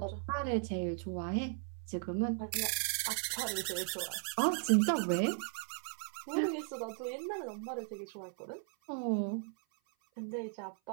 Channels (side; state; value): left; silent; 53 dB below the other